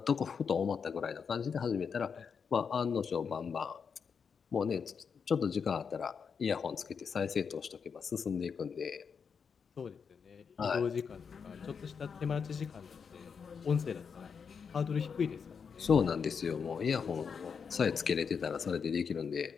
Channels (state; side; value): quieter; right; 6.2 dB